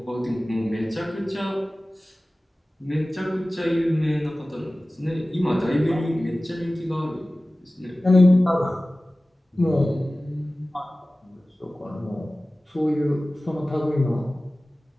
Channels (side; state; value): both; normal; correlation 0.97